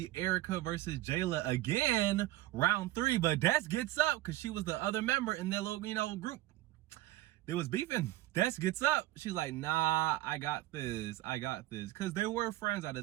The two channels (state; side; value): quieter; left; 16.6 dB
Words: Erica versus Jayla again, round 3, but Des gets up because she was the other member in their little, group. They was beefing. Des gets up. She's like, nah, I got this. Because they were friends at the